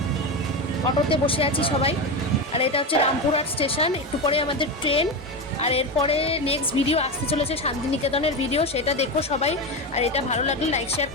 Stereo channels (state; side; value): normal; both; correlation 0.17